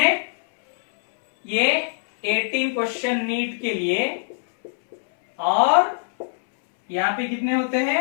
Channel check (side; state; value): right; silent; 64 dB below the other